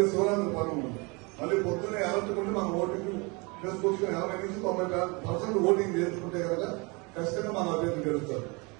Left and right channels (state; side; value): quieter; left; 28.6 dB